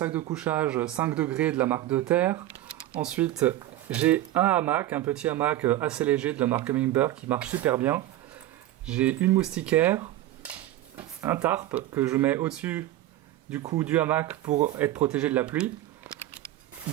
de couchage 5 degrés de la marque De Terre. Ensuite j'ai un hamac, un petit hamac assez léger de la marque Humminbird qui marche super bien. J'ai une moustiquaire, un tarp que je mets au-dessus du hamac pour être protégé de la pluie.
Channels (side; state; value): left; quieter; 14.4 dB